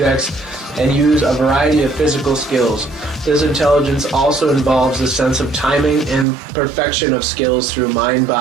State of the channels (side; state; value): left; drops out; at 6.2 s